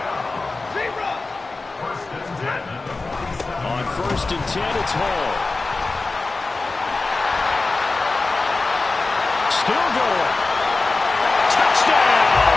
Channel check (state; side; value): quieter; right; 3.6 dB